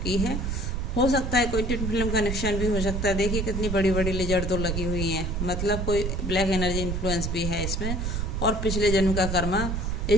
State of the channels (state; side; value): noise; right; rumble, 1 dB below the sound